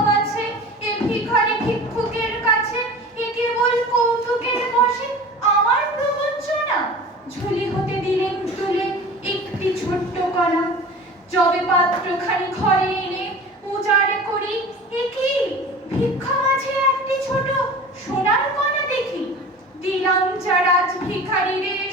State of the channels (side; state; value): both; normal; correlation 0.39